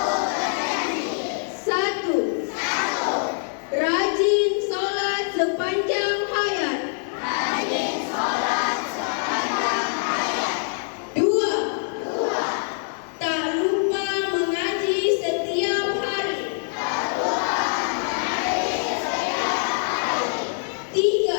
1. Rajin sholat sepanjang hayat. 2. Tak lupa mengaji setiap hari.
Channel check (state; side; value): silent; right; digital silence